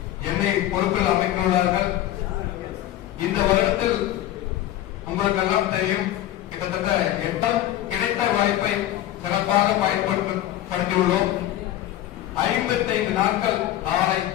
என்னை பொறுப்பில் அமைத்துள்ளார்கள். இந்த வருடத்தில் உங்களுக்கெல்லாம் தெரியும், கிட்டத்தட்ட 8 கிடைத்த வாய்ப்பை சிறப்பாக பயன்படுத்தியுள்ளோம். 55 நாட்கள் நாளை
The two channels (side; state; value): right; quieter; 13.4 dB